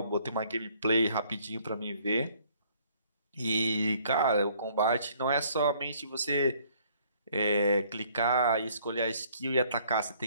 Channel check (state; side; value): inverted; both; correlation -0.61